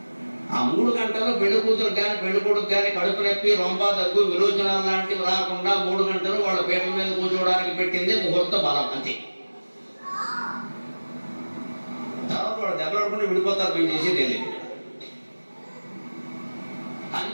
ఆ 3 గంటల్లో పెళ్లి కూతురు కానీ పెళ్లి కొడుకు కానీ కడుపు నొప్పి, రొంప, దగ్గు, విరోచనాలు లాంటివి రాకుండా 3 గంటలు వాళ్ళ పీటల మీద కూర్చోవడానికి పెట్టిందే ముహూర్త బలం అంతే. తర్వాత వాడు దెబ్బలాడుకుంటే విడిపోతారు, మేము చేసేది తెలియదు.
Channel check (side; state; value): both; inverted; correlation -1.00